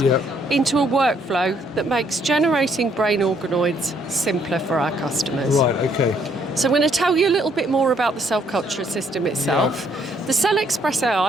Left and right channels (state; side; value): normal; both; correlation 0.68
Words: into a workflow that makes generating brain organoids simpler for our customers. So I'm going to tell you a little bit more about the cell culture system itself. The CellExpress